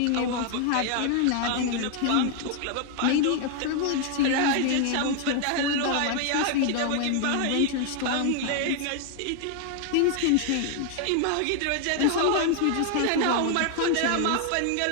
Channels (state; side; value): different; both; correlation 0.00